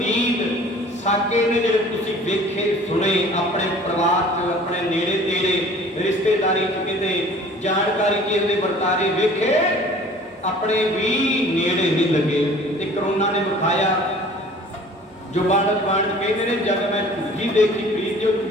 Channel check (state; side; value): normal; both; correlation 0.48